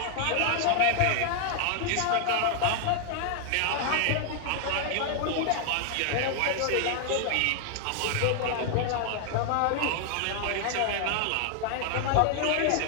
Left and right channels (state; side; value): different; both; correlation 0.00